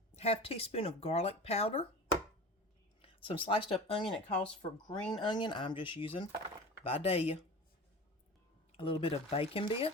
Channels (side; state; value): both; normal; correlation 0.35